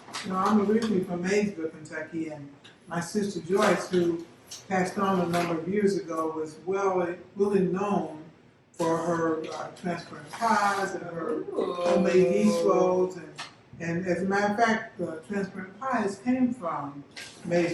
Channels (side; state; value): both; identical; correlation 1.00